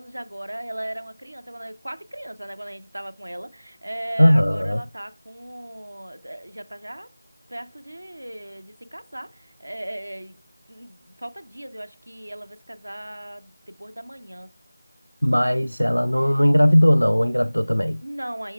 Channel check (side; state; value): both; inverted; correlation -1.00